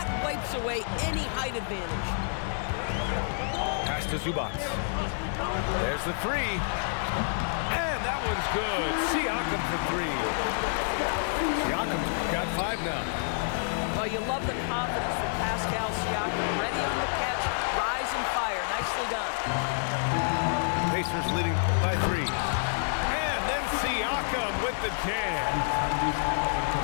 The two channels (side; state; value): right; silent; digital silence